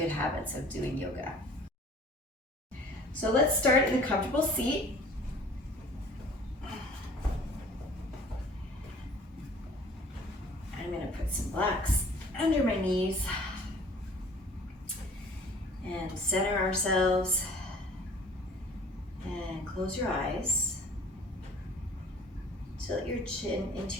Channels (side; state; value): both; normal; correlation 0.50